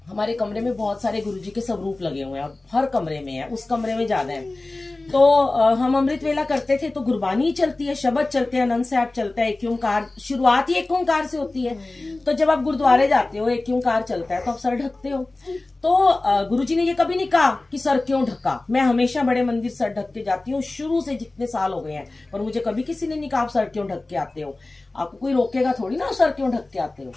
हमारे कमरे में बहुत सारे गुरुजी के स्वरूप लगे हुए हैं और हर कमरे में है, उस कमरे में ज्यादा है। तो हम अमृत वेला करते थे तो गुरबानी चलती है, शब्द चलते हैं, आनंद साहब चलता है, एक ओंकार, शुरुआत ही एक ओंकार से होती है। तो जब आप गुरुद्वारे जाते हो, एक ओंकार चलता है तो आप सर ढकते हो। तो गुरुजी ने ये कभी नहीं कहा कि सर क्यों ढका। मैं हमेशा बड़े मंदिर सर ढक के जाती हूँ, शुरू से जितने साल हो गए हैं, और मुझे कभी किसी ने नहीं कहा आप सर क्यों ढक के आते हो। आपको कोई रोकेगा थोड़ी ना सर क्यों ढक के आते हो,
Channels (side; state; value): right; quieter; 3.0 dB